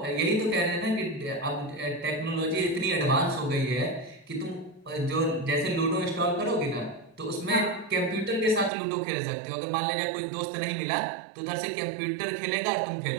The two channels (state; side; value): drops out; left; at 8.7 s